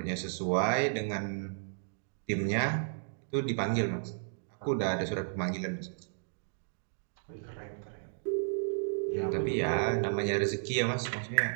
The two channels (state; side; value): silent; left; digital silence